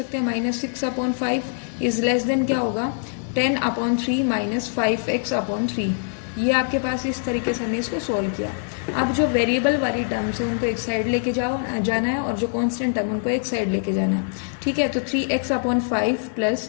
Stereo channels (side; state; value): right; silent; 63 dB below the other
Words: हैं -6 अपॉन 5 इज लेस देन क्या होगा 10 अपॉन 3 - 5x अपॉन 3। ये आपके पास इस तरीके से हमने इसको सोल्व किया। अब जो वेरिएबल वाली टर्म्स है उनको एक साइड लेके जाना है, और जो कांस्टेंट टर्म उनको एक साइड लेके जाना है। ठीक है, तो 3x upon 5